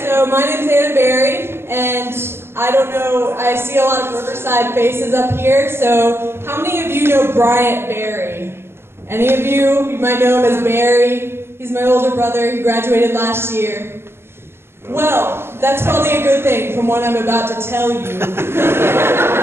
so my name's Anna Berry, and I don't know, I see a lot of Riverside faces up here, so how many of you know Bryant Berry? Any of you? You might know him as Barry. He's my older brother, he graduated last year. Well, that's probably a good thing from what I'm about to tell you.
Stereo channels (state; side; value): late; left; 0.12 ms